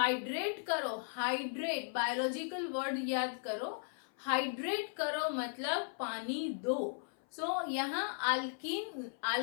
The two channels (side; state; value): right; silent; 53 dB below the other